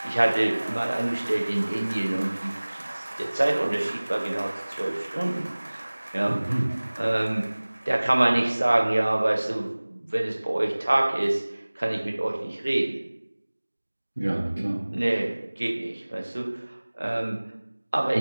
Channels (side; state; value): both; inverted; correlation -1.00